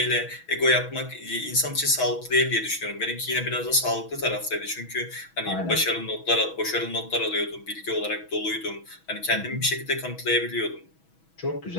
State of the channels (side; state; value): right; late; 6.2 ms